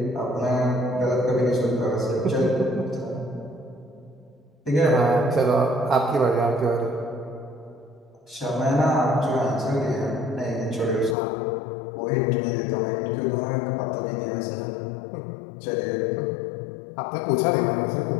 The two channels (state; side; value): drops out; right; at 11.2 s